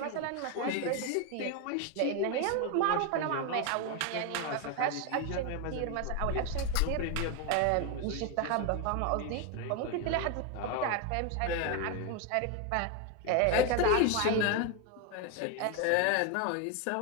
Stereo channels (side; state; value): both; different; correlation 0.02